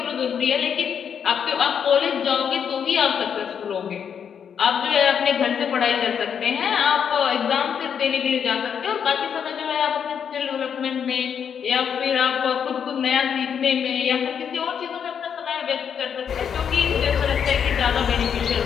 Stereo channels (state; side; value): quieter; right; 7.7 dB